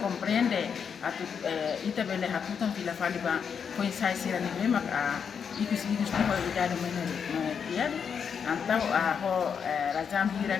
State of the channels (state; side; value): quieter; right; 6.9 dB